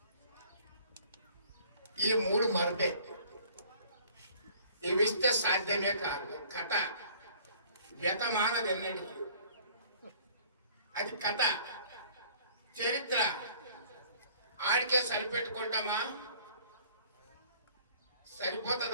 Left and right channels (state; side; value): inverted; both; correlation -0.54